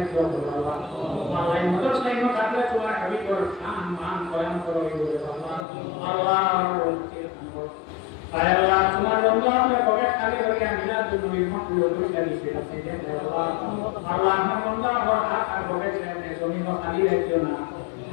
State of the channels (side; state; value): right; drops out; at 5.7 s